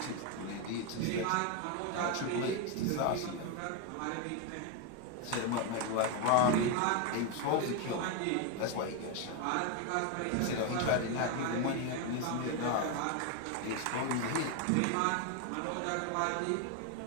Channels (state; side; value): different; both; correlation 0.01